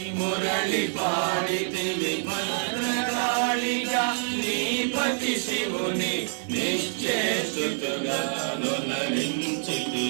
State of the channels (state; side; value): silent; left; digital silence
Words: మురళి పాడితివి, భద్రకాళిగా నీపతి శివుని నిశ్చేసుతుగా